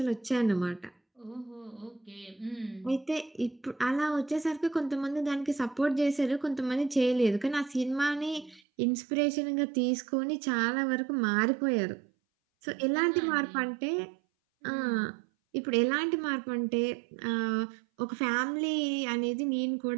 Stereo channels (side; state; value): left; drops out; at 8.6 s